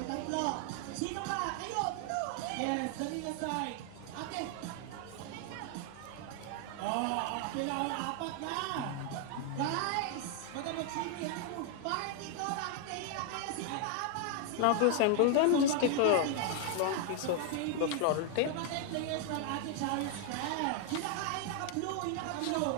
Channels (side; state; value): both; different; correlation 0.00